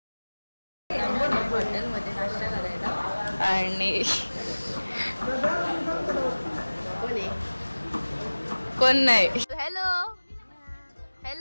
हॉटेलमध्ये नाश्ता करायला आणि कोण नाही. हॅलो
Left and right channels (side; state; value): both; inverted; correlation -1.00